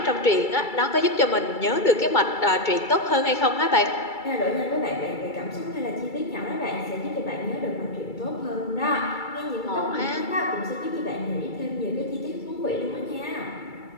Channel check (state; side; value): late; right; 2.3 ms